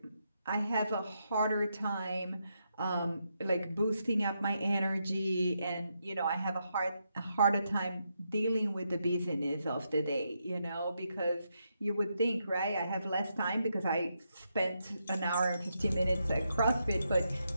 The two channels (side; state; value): both; inverted; correlation -0.82